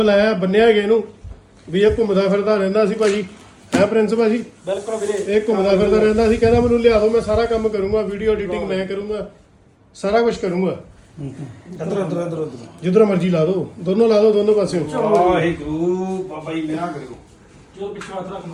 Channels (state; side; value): identical; both; correlation 1.00